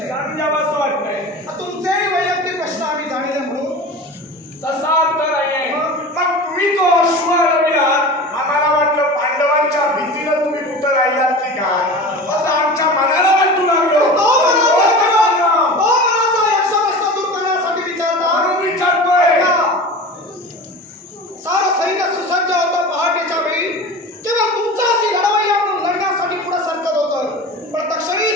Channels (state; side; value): normal; both; correlation 0.33